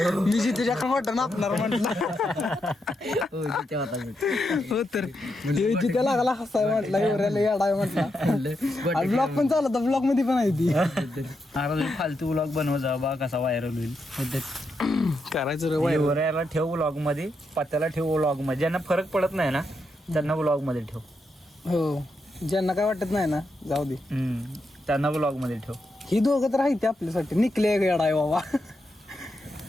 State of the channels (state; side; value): normal; both; correlation 0.83